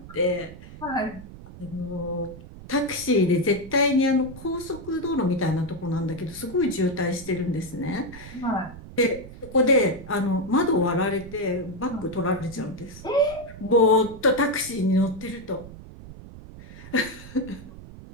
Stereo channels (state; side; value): noise; right; rumble, 15 dB below the sound